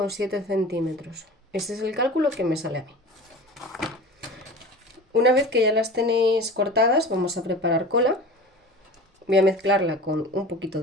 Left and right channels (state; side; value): normal; both; correlation 0.37